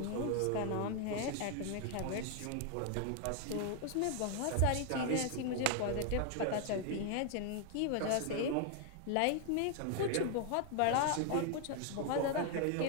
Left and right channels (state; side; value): different; both; correlation 0.00